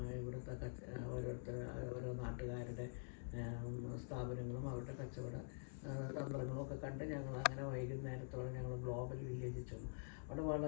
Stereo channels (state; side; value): silent; right; digital silence